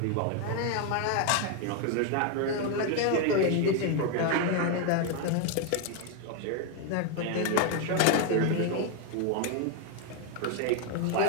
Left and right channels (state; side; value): different; both; correlation 0.01